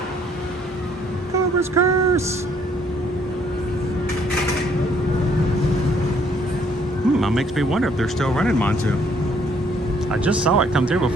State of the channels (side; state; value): both; normal; correlation 0.66